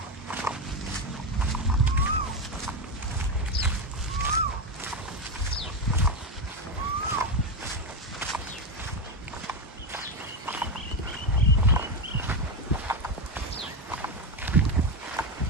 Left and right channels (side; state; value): both; normal; correlation 0.13